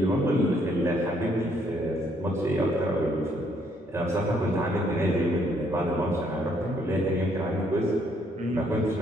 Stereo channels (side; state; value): both; normal; correlation 0.69